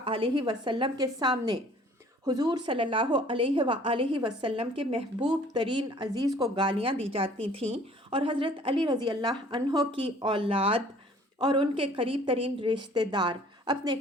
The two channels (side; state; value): both; normal; correlation 0.54